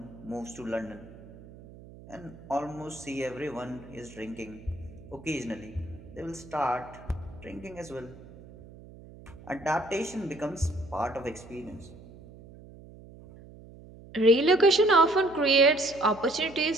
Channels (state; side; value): noise; right; hum, 19 dB below the sound